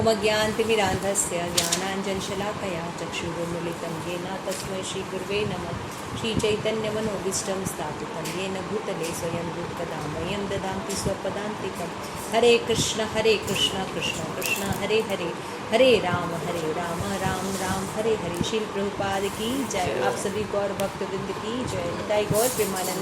ज्ञानतिमिरान्धस्य ज्ञानाञ्जनशलाकया चक्षुरुन्मीलितं येन तस्मै श्रीगुरुवे नमः। श्रीचैतन्यमनोभीष्टं स्थापितं येन भूतले स्वयं रूपकदा मह्यं ददाति स्वपदान्तिकं। हरे कृष्ण कृष्ण कृष्ण हरे हरे, हरे राम राम राम हरे हरे। श्रील प्रभुपाद की जय। आप सभी गौर भक्तवृंद की जय। निताई गौर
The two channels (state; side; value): identical; both; correlation 1.00